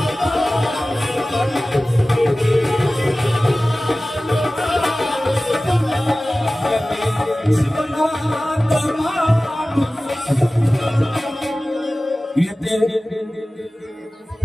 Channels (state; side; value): normal; both; correlation 0.97